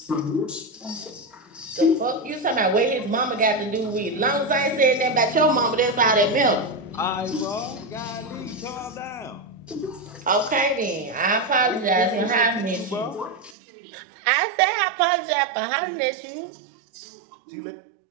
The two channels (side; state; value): left; drops out; at 13.6 s